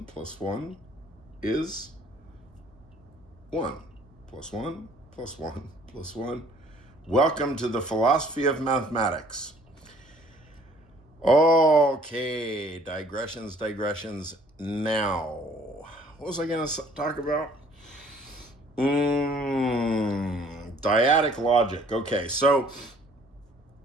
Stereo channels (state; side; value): normal; both; correlation 0.57